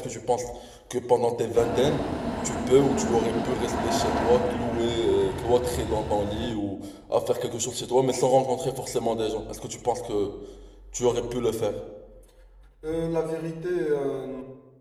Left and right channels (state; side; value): identical; both; correlation 1.00